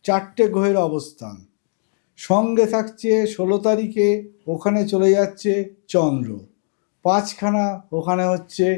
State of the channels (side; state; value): right; silent; 66 dB below the other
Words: 4টে গ্রহের অবস্থান। সঙ্গে থাকছে 16 তারিখে ওখানে চলে যাচ্ছে চন্দ্র। 5খানা ওখানে হচ্ছে